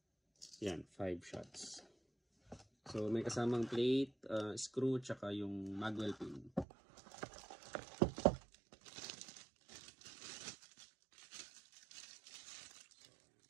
Yan, 5 shots. So may kasamang plate, screw, tsaka yung magwell pin.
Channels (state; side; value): drops out; left; at 6.7 s